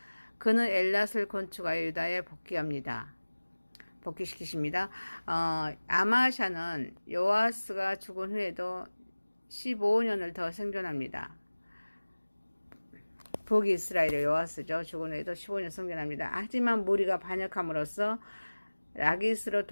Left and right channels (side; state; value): both; inverted; correlation -1.00